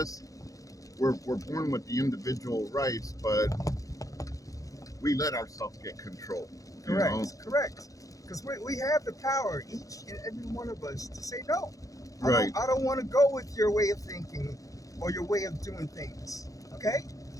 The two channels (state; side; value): late; right; 0.17 ms